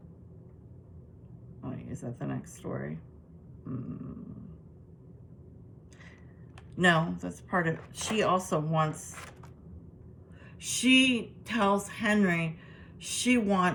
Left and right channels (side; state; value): both; identical; correlation 1.00